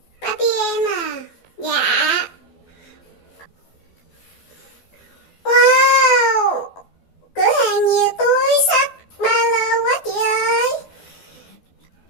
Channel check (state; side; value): late; right; 12 ms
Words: Barbie em à. Dạ. Wow, cửa hàng nhiều túi xách ba lô quá chị ơi.